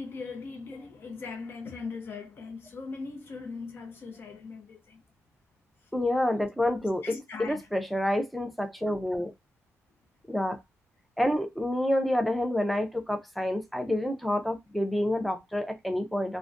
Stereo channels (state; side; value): normal; both; correlation 0.93